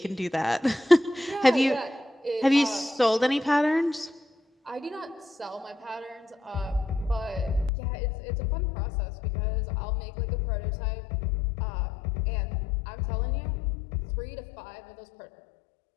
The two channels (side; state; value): right; drops out; at 7.7 s